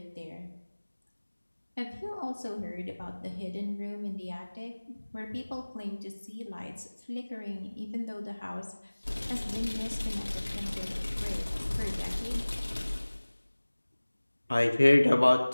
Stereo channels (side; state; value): both; inverted; correlation -1.00